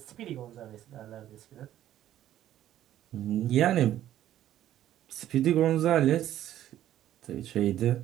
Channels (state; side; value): quieter; left; 12.3 dB